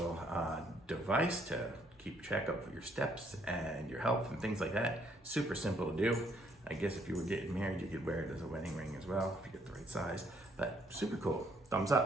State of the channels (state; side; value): normal; both; correlation 0.68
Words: device to keep track of your steps and your health and things like that, super simple to do. I guess if you were getting married, you could wear it as a wedding ring as well, if you get the right size, but super cool, thumbs